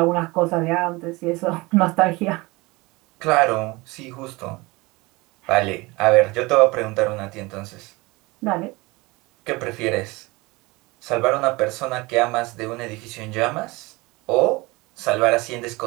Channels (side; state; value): left; quieter; 23.3 dB